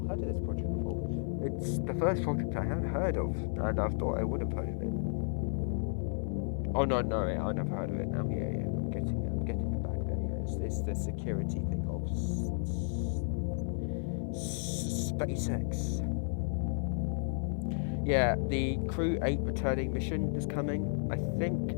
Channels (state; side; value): silent; right; digital silence